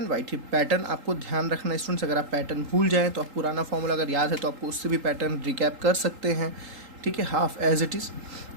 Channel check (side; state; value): left; late; 3.8 ms